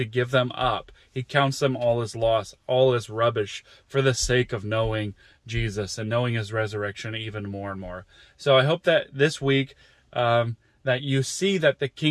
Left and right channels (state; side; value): identical; both; correlation 1.00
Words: give them up. He counts them all as loss, all as rubbish for the sake of knowing Jesus and knowing his resurrection even more and more. So I hope that this week, that you see that the